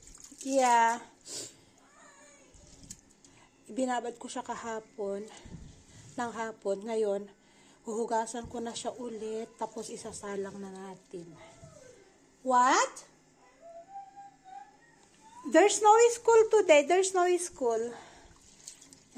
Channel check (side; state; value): both; identical; correlation 1.00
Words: Ibinabad ko siya kahapon. Ng hapon. Ngayon, huhugasan ko na siya ulit. Tapos isasalang na natin. What? There's no school today. There's no school.